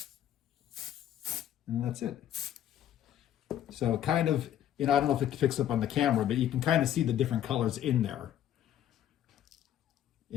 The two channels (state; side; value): quieter; right; 11.1 dB